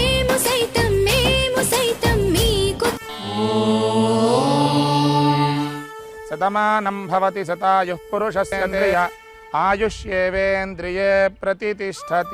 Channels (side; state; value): both; identical; correlation 1.00